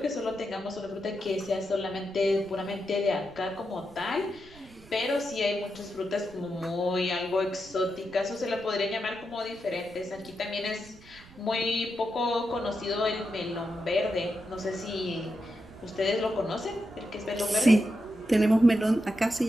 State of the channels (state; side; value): noise; right; rumble, 22 dB below the sound